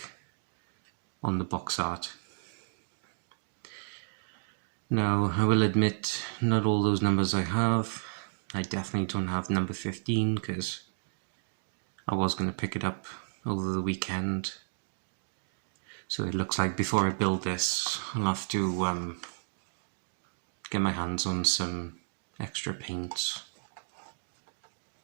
on the box art. Now, I will admit, not all those numbers I have. I definitely don't have number 15 because I was going to pick it up over the weekend. So it looks like before I build this, I'll have to get my hands on some extra paints.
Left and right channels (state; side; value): silent; left; digital silence